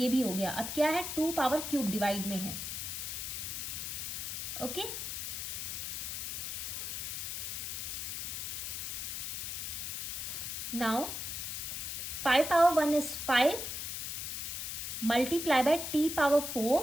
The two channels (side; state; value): left; noise; hiss, 4 dB below the sound